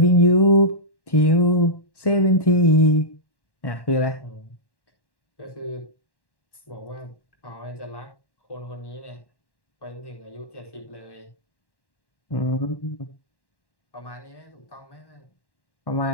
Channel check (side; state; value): right; late; 1.1 ms